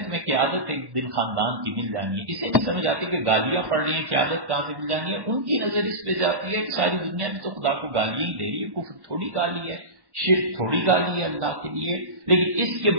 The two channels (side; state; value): left; late; 1.1 ms